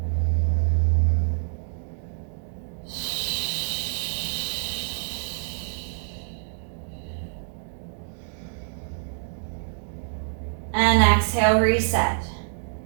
And exhale, reset.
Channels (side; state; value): left; silent; digital silence